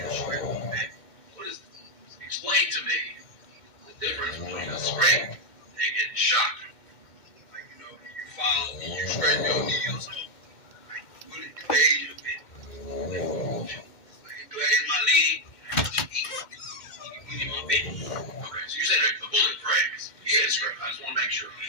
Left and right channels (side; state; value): right; late; 2.1 ms